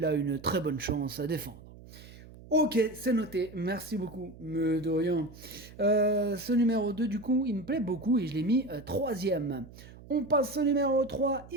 a une très bonne chance à défendre. Ok, c'est noté. Merci beaucoup. Mais de rien. Ce numéro 2, du coup, il me plaît beaucoup et je l'ai mis troisième. On passe au numéro 3,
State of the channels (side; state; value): right; noise; hum, 19 dB below the sound